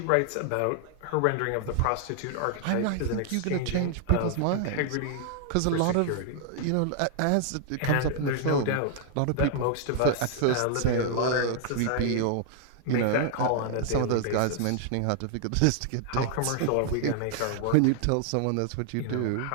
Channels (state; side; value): different; both; correlation -0.01